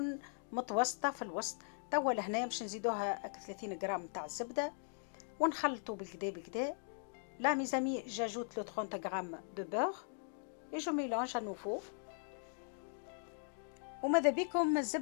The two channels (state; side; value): silent; right; digital silence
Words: متوسطه في الوسط. توا لهنا باش نزيدوها 30 غرام نتاع الزبده ونخلطوا بالكدا بالكدا. لا ميزامي جاجوت لو 30 غرام دو بور اي جو ميلانج ا نوفو. وماذا بكم